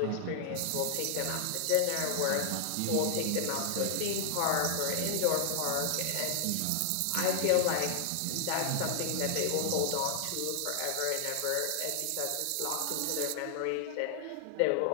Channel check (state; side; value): different; both; correlation 0.00